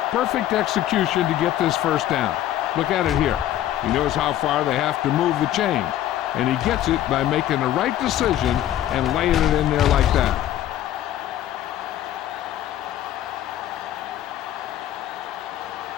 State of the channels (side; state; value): right; quieter; 12.5 dB